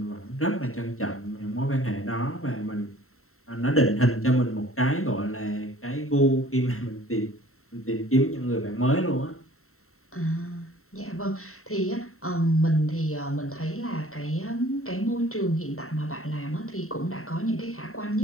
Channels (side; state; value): right; late; 0.63 ms